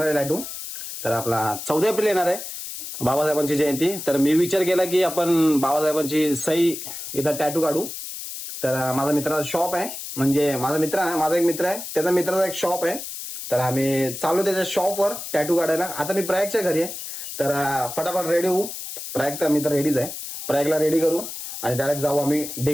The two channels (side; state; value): left; noise; hiss, 8 dB below the sound